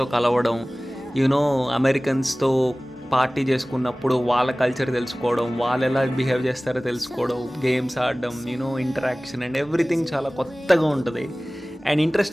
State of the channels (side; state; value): both; normal; correlation 0.98